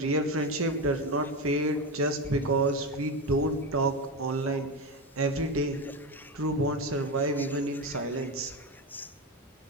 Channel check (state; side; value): normal; both; correlation 0.16